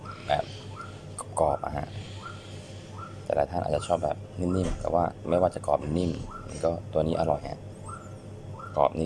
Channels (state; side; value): identical; both; correlation 1.00